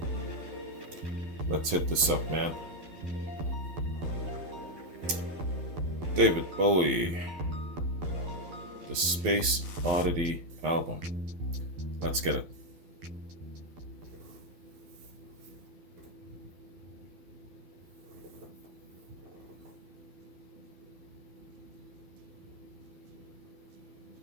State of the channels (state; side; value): late; left; 12 ms